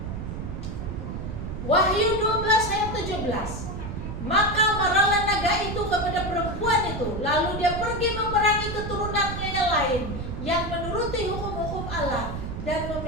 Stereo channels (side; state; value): right; noise; rumble, 6 dB below the sound